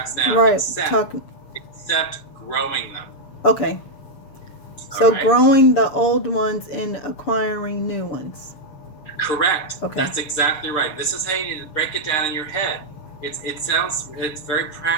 now, Right. except growing them. Okay. So right? growing the old ones and acquiring new ones. Correct. Okay. That's exactly right. This is how you need to break it down in your head. It's very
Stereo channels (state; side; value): late; right; 6.8 ms